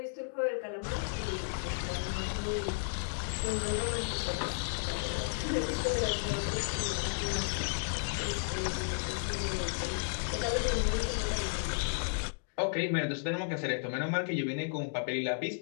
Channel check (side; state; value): right; silent; digital silence